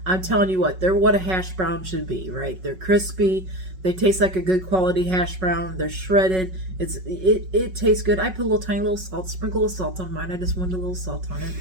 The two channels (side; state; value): left; late; 5.4 ms